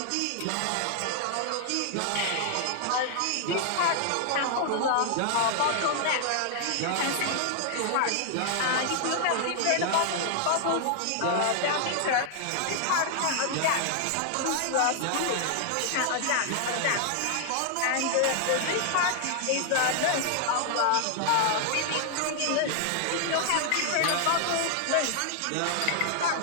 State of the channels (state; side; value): different; both; correlation 0.00